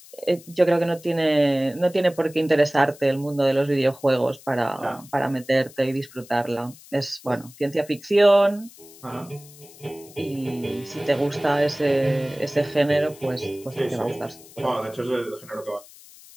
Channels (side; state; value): left; noise; hiss, 21 dB below the sound